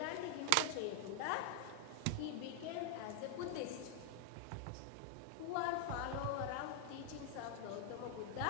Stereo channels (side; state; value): both; different; correlation 0.00